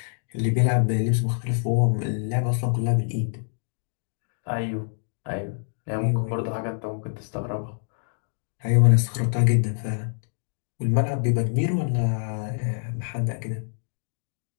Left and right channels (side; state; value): right; silent; digital silence